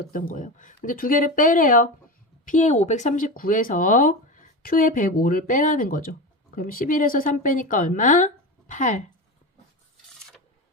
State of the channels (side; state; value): both; normal; correlation 0.23